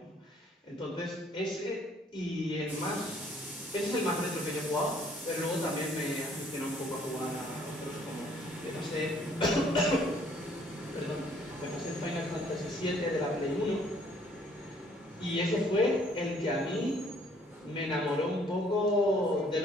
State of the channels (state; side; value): normal; both; correlation 0.61